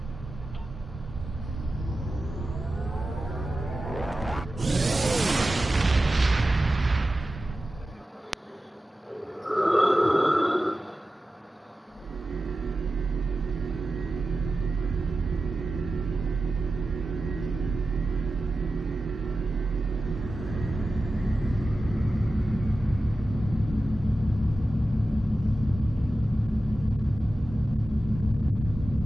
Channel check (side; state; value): both; normal; correlation 0.93